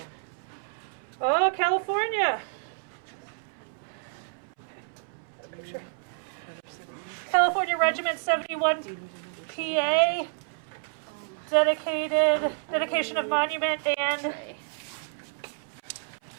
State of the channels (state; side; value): silent; left; 59 dB below the other